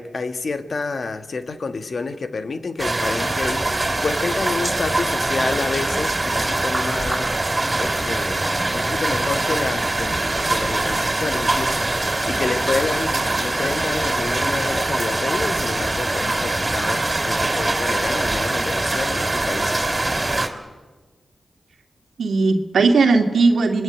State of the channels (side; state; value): both; normal; correlation 0.94